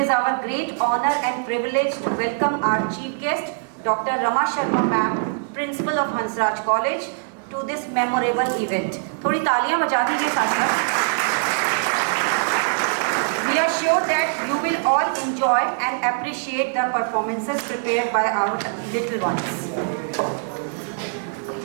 our great honor and privilege to welcome our chief guest, Dr. Rama Sharma Ma'am, Principal of Hansraj College, to this memorable event. थोड़ी तालियां बजा दीजिए साथ। We are sure that you will all enjoy and appreciate the performances prepared by our little ones.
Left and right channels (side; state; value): left; silent; digital silence